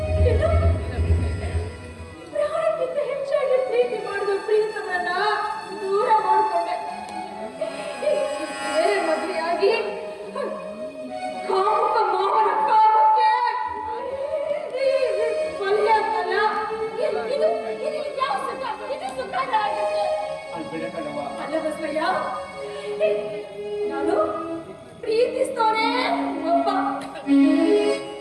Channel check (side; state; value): both; identical; correlation 1.00